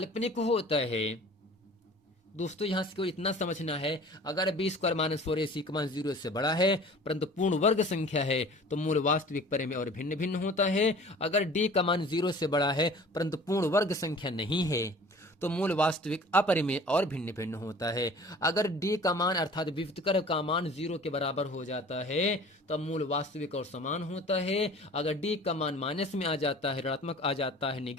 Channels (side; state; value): both; normal; correlation 0.45